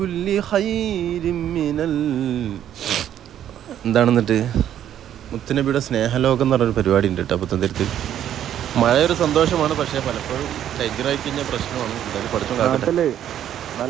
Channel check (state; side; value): quieter; left; 10.7 dB